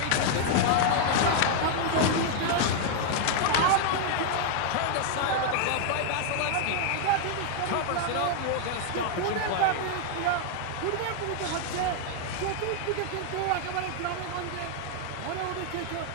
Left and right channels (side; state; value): both; different; correlation 0.00